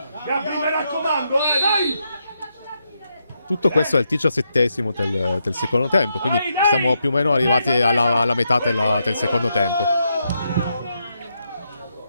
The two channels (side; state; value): both; inverted; correlation -0.81